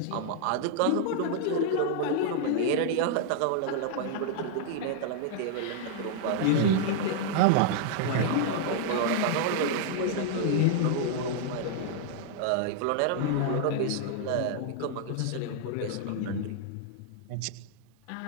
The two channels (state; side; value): different; both; correlation -0.01